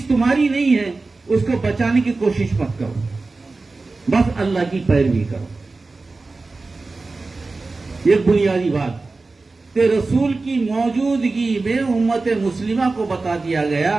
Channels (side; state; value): left; quieter; 3.6 dB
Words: تمہاری نہیں ہے اس کو بچانے کی کوشش مت کرو، بس اللہ کی پیروی کرو۔ یہ بنیادی بات کہ رسول کی موجودگی میں امت مسلمہ کو بتا دیا گیا